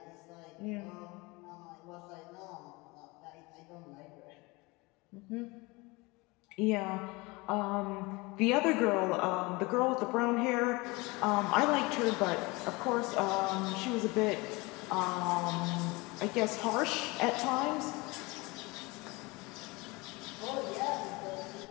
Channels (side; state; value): right; quieter; 24.6 dB